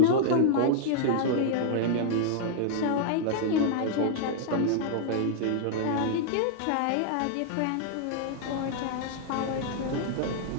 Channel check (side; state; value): both; different; correlation 0.00